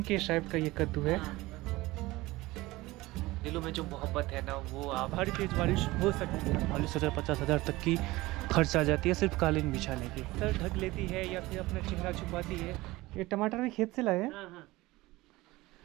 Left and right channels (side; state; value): left; quieter; 19.7 dB